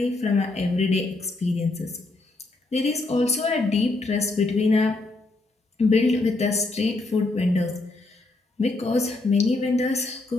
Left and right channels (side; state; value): right; quieter; 3.1 dB